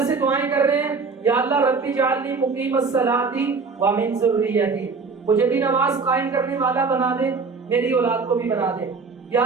سے دعائیں کر رہے ہیں یا اللہ رب اجعلنی مقیم الصلاۃ ومن ذریتی، مجھے بھی نماز قائم کرنے والا بنا دے، میری اولاد کو بھی بنا دے۔ یا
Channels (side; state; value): left; quieter; 4.7 dB